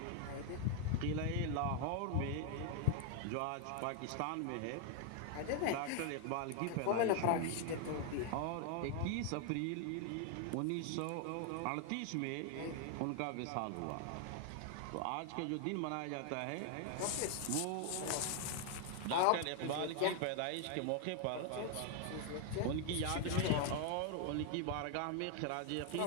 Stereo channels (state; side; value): different; both; correlation 0.00